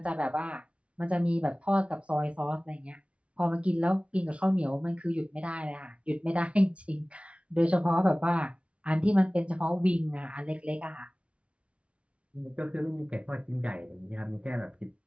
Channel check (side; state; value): left; late; 0.061 ms